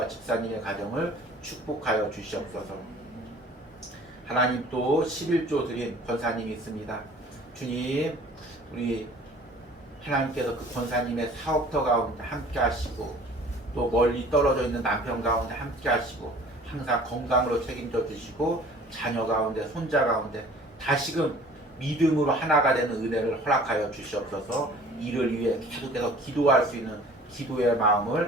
집사님의 가정을 축복하여 주시옵소서. 하나님, 또 11조 드린 권사님이 있습니다. 주님, 우리 하나님께서 그 권사님의 사업터 가운데 함께 하시고 또 멀리 떨어져 있는 남편 가운데 함께 하시고 항상 건강으로 책임져 주시고 자녀 가운데 손자 가운데 다시금 믿음으로 하나가 되는 은혜를 허락하여 주시옵소서. 이를 위해 계속해서 기도할 수 있는 기도의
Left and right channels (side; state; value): both; normal; correlation 0.49